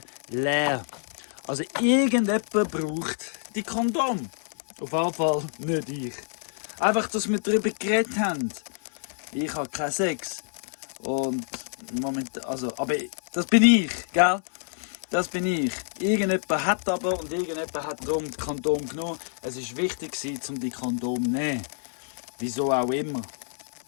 leer. Also irgendjemand braucht die Kondom. Auf jeden Fall nicht ich. Einfach, dass wir darüber geredet haben. Ich habe keinen Sex. Und momentan, also, aber das bin ich, gell? Das bin ich. Irgendjemand hat aber und irgendjemand hat darum die Kondom genommen. Es war wichtig, um die Kondom zu nehmen. Wieso auch immer.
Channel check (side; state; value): right; silent; digital silence